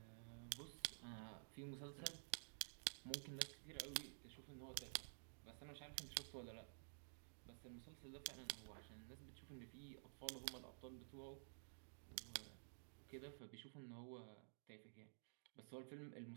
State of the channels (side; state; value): left; silent; digital silence